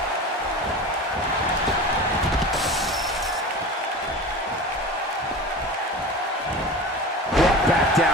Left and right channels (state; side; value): normal; both; correlation 0.32